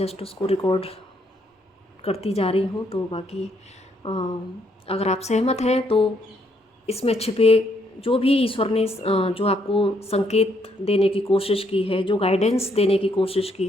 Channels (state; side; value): normal; both; correlation 0.72